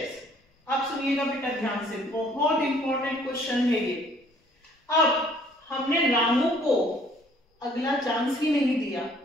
अब सुनिएगा बेटा ध्यान से, बहुत इंपॉर्टेंट क्वेश्चन है ये। अब हमने रामू को अगला चांस ही नहीं दिया,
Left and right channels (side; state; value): both; normal; correlation 0.59